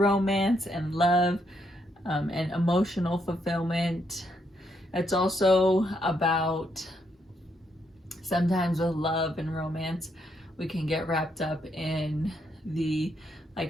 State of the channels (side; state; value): both; normal; correlation 0.76